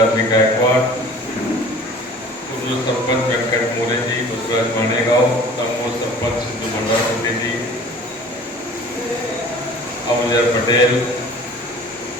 गायकवाड, सरपंच व्यंकट मोरे जी, बसवराज माणेगाव, तमोर सरपंच सिद्धू भंडारकोटे जी, अबुजर पटेल,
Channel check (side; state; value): both; normal; correlation 0.46